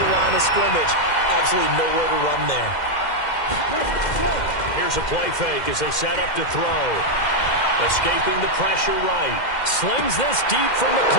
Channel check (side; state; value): right; late; 2.1 ms